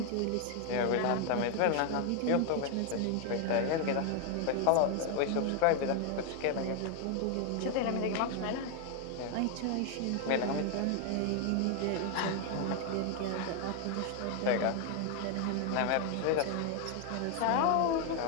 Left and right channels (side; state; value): both; different; correlation 0.01